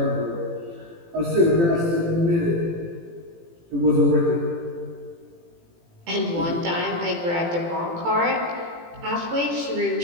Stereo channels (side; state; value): left; late; 18 ms